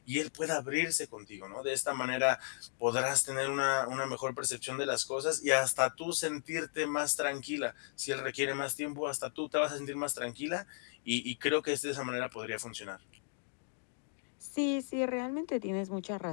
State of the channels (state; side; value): silent; right; digital silence